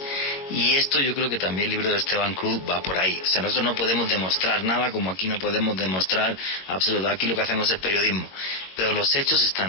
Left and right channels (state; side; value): late; right; 21 ms